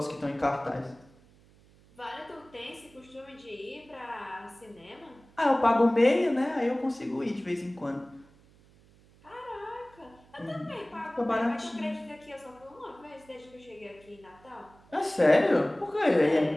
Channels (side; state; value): right; noise; hum, 27 dB below the sound